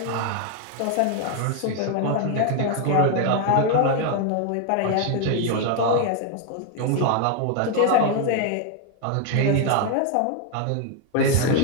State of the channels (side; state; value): both; different; correlation 0.01